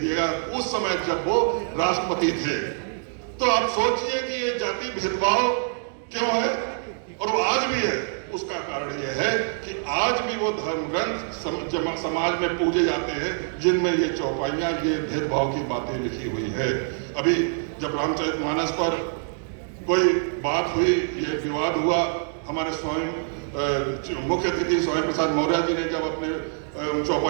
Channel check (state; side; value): silent; left; digital silence